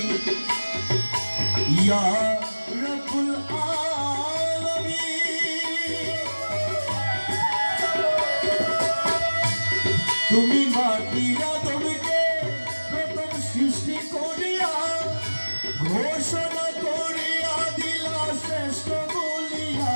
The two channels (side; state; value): both; inverted; correlation -1.00